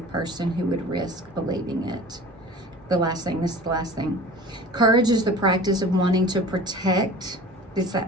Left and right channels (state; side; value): normal; both; correlation 0.40